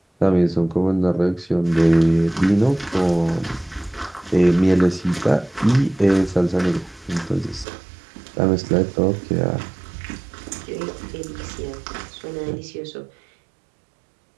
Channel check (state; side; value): drops out; left; at 7.7 s